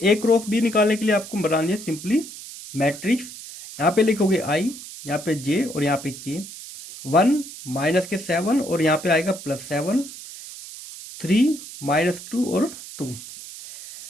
ए क्रॉस बी निकालने के लिए आपको बनानी है सिंपली मैट्रिक्स। यहाँ पे लिखोगे आई, यहाँ पे जे और यहाँ पे के। 1 माइनस के 7 और यहाँ पे आएगा +7, 3 -2 और 2।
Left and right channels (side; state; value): right; noise; hiss, 13 dB below the sound